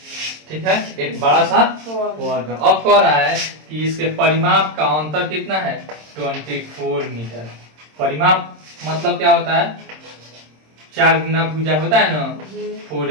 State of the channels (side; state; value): left; late; 26 ms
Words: ठीक है? एक बड़ा सा वर्ग। अब कह रहा है कि इसके परिमाप का अंतर कितना है, 24 मीटर। परिमाप मतलब क्या होता है, 4 गुना भुजा होता है ना,